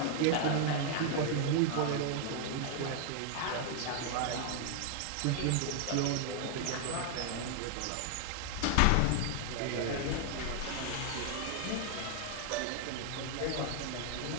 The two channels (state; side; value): different; both; correlation 0.00